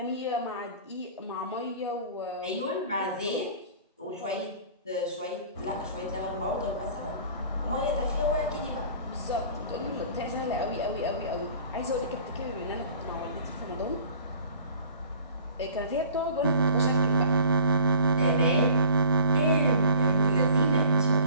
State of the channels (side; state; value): both; inverted; correlation -0.48